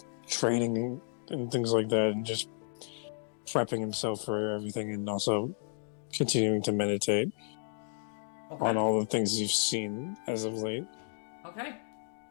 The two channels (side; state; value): right; silent; 56 dB below the other